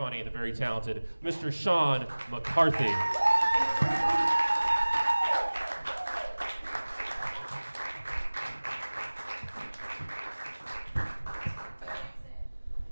the very talented Mr. Sean McCarthy.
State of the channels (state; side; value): inverted; both; correlation -1.00